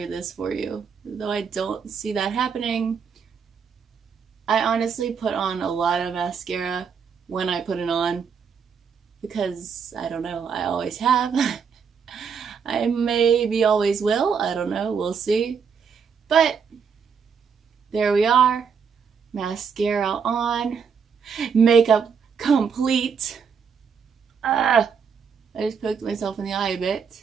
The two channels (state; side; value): quieter; left; 6.3 dB